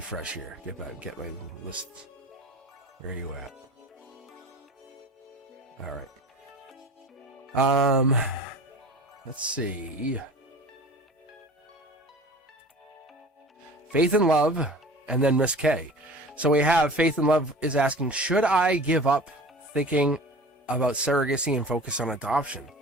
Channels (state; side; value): normal; both; correlation 0.39